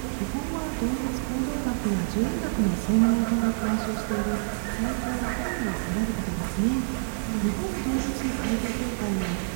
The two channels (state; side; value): silent; left; digital silence